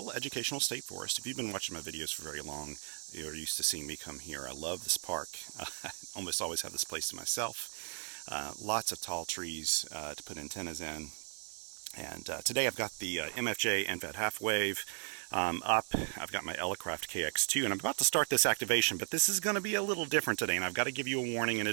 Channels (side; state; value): left; silent; 54 dB below the other